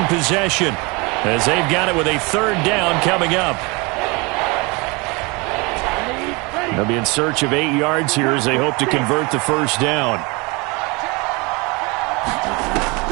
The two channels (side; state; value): left; quieter; 27.3 dB